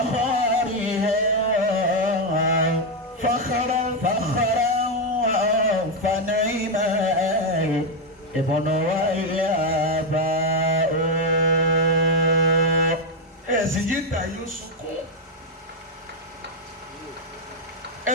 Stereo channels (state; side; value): normal; both; correlation 0.05